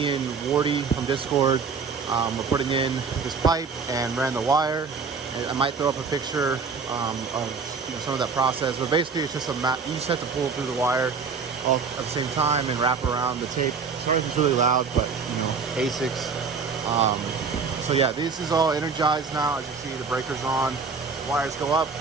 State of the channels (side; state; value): left; quieter; 5.2 dB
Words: and Wardy from Discord were putting in this pipe and ran the wire. And I might throw up a picture of some of that process, but basically it's just a map. You just have to pull through the wire all at the same time and wrap around the tape. Sorry if it's really loud, but ASICs. So yeah, this is all energized now. As you see, the breaker's on, wires go up